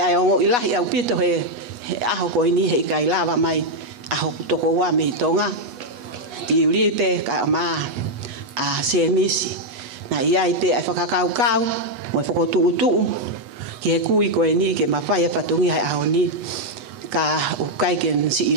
ongo ilahi au pito he aho koe ni he kai lava mai. Aho toko ua me tonga. Tiulipe ka maa. A se misi. Na iai pe ai whakakau. Mo e whakotuu. Ki he kui koe ni ke mawhai e whatungi hai aho ni. Ka ukai ke si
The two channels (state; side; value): late; left; 8.2 ms